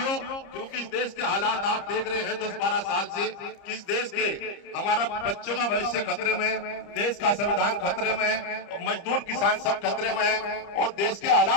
क्योंकि इस देश के हालात आप देख रहे हैं 10-12 साल से, किस देश के हमारा बच्चों का भविष्य खतरे में, देश का संविधान खतरे में है, मजदूर किसान सब खतरे में है और देश के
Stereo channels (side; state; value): right; late; 30 ms